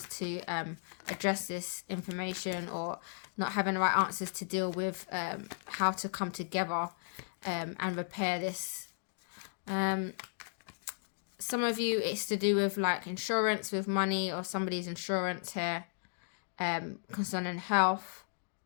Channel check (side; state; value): right; silent; digital silence